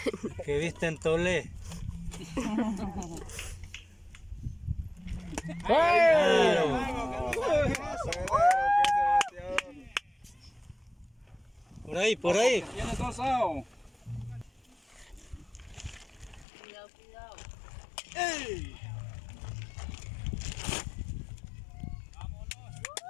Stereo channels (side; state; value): right; drops out; at 16.4 s